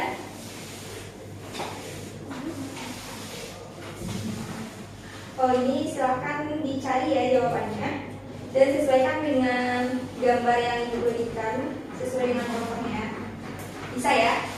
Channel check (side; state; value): both; identical; correlation 1.00